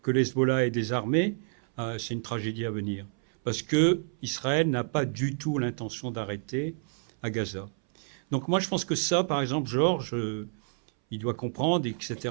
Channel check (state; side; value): silent; left; 59 dB below the other